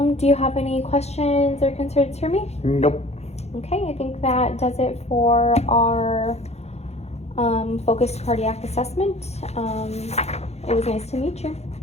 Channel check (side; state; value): right; late; 0.31 ms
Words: Do you have any questions or concerns for me? Nope. Okay, I think that does it for our focused cardiac assessment. It was nice to meet you.